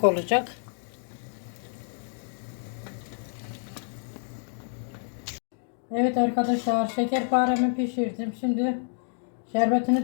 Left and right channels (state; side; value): silent; right; digital silence